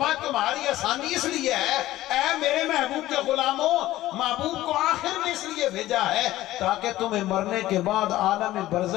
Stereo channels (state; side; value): quieter; right; 15.5 dB